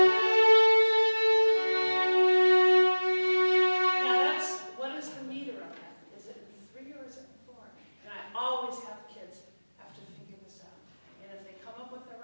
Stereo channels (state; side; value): inverted; both; correlation -1.00